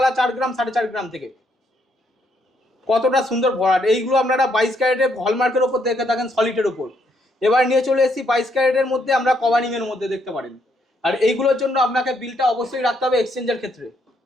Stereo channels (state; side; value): normal; both; correlation 0.73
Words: 4 গ্রাম 4.5 গ্রাম থেকে। কতটা সুন্দর ভরাট। এইগুলো আপনারা 22 ক্যারেটের হলমার্কের ওপর দেখে থাকেন, সলিডের ওপর। এবার নিয়ে চলে এসেছি 22 ক্যারেটের মধ্যে আমরা কভারিং এর মধ্যে, দেখতে পারেন। আর এইগুলোর জন্য আপনাকে বিলটা অবশ্যই রাখতে হবে এক্সচেঞ্জের ক্ষেত্রে,